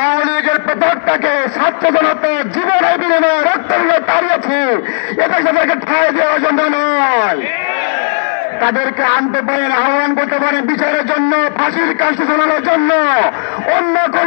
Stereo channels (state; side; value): silent; right; digital silence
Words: আওয়ামী লীগের পতাকাকে ছাত্র জনতার জীবনের বিনিময়ে রক্তের তাড়িয়েছি, এদেশে তাদেরকে ঠাঁই দেওয়ার জন্য নয়। তাদেরকে আনতে পারেন, আহ্বান করতে পারেন বিচারের জন্য, ফাঁসির কাছে শোনানোর জন্য, অন্য